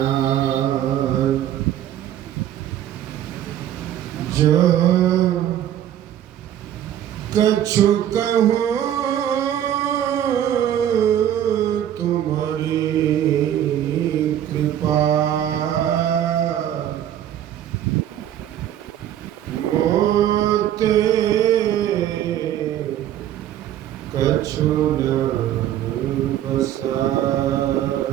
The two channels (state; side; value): quieter; left; 11.2 dB